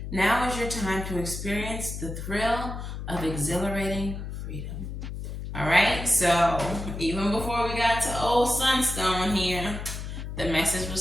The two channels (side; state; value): left; noise; hum, 7 dB below the sound